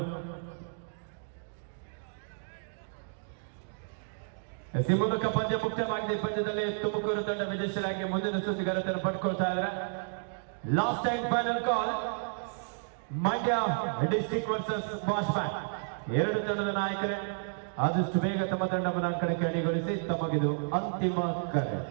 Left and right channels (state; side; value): silent; left; digital silence